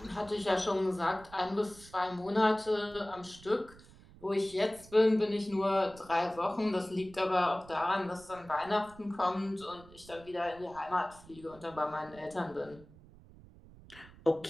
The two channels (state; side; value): noise; right; rumble, 22 dB below the sound